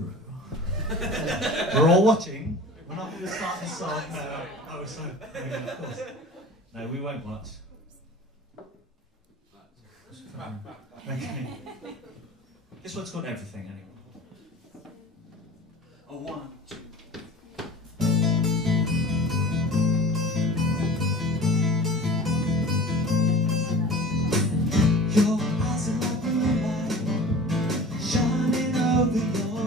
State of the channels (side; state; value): both; normal; correlation 0.39